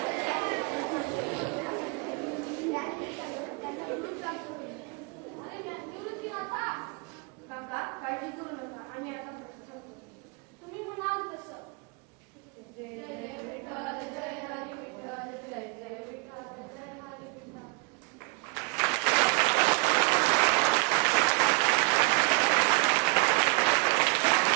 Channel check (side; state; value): left; quieter; 31.7 dB